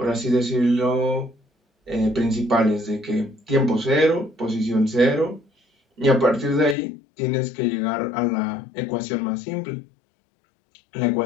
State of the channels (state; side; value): drops out; right; at 6.8 s